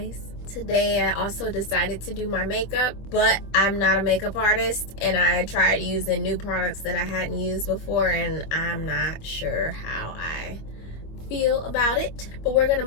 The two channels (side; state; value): right; late; 25 ms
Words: Today I also decided to do my makeup, but I'm not a makeup artist, and I tried using new products that I hadn't used before, and I'm not sure how I feel about it, but we're gonna